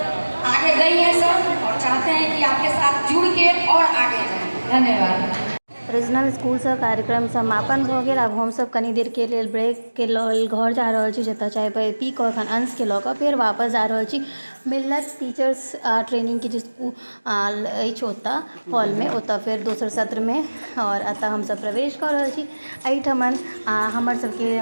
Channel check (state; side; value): inverted; both; correlation -1.00